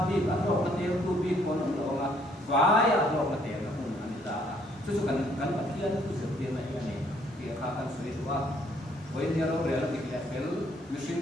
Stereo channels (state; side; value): normal; both; correlation 0.65